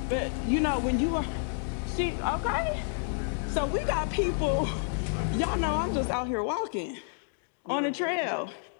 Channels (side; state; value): right; silent; 57 dB below the other